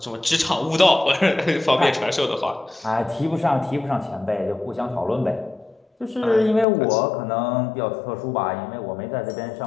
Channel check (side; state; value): right; drops out; at 6.7 s